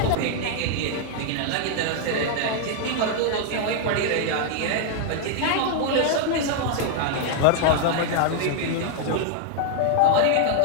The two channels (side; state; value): both; different; correlation 0.00